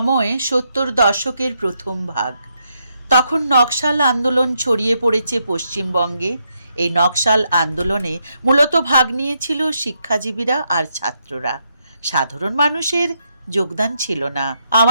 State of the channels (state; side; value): inverted; both; correlation -0.79